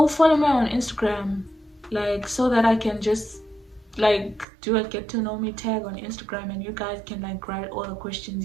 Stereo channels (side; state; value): left; drops out; at 4.5 s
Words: follow me on Instagram, so that I can just do a get to know me tag on Instagram, and you guys can write all the questions